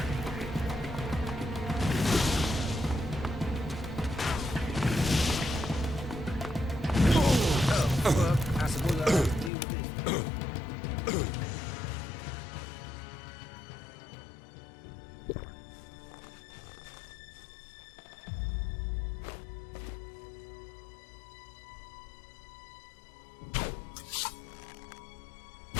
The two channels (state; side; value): drops out; right; at 9.5 s